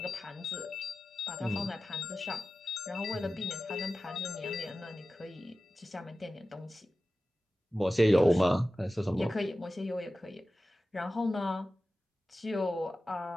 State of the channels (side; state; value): both; normal; correlation 0.95